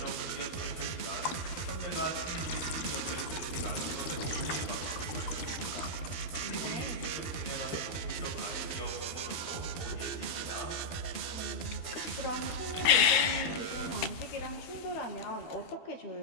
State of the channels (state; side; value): late; right; 13 ms